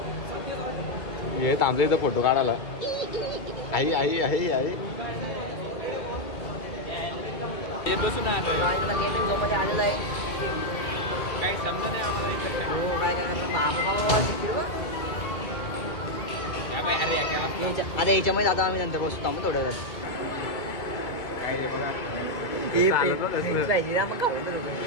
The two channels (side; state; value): right; late; 2.5 ms